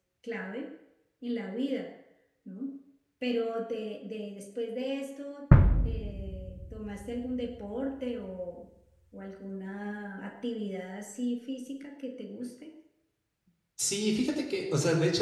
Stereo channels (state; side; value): identical; both; correlation 1.00